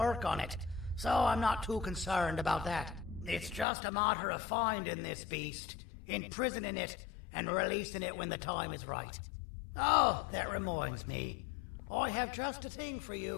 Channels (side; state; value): right; drops out; at 3.7 s